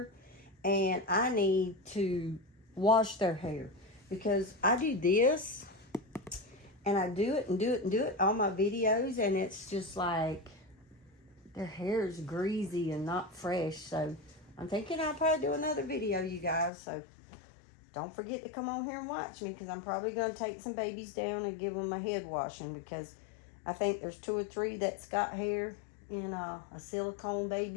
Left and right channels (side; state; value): right; drops out; at 16.7 s